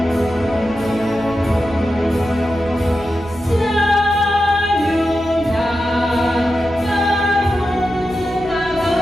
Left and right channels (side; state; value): right; noise; rumble, 18 dB below the sound